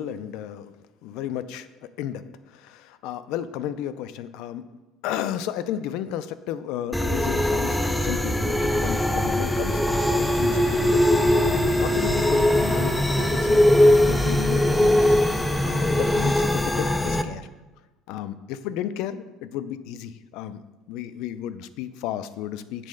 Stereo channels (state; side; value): normal; both; correlation 0.86